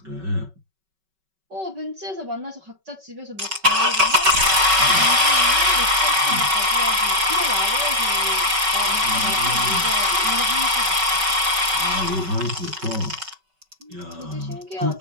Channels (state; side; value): late; left; 5.3 ms